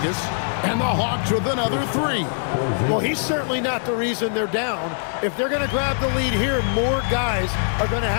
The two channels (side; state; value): right; silent; digital silence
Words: and the Hawks with another three. Well, he's certainly not the reason they're down. If they're going to grab the lead here, more guys are going to